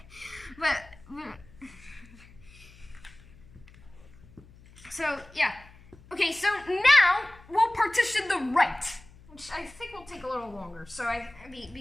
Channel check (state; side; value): noise; left; hum, 23 dB below the sound